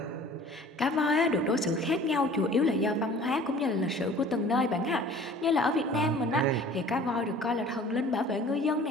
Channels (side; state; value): both; normal; correlation 0.48